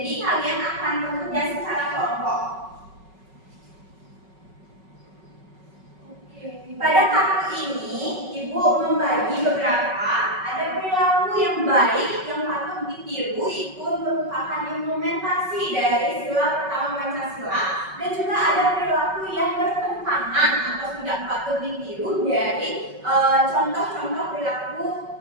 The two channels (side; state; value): left; late; 5.3 ms